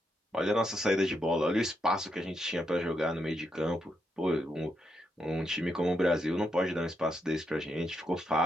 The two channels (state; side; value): normal; both; correlation 0.80